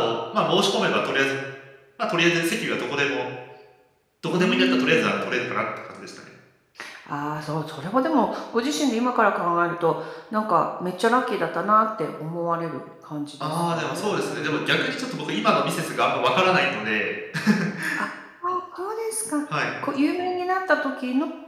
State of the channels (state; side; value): identical; both; correlation 1.00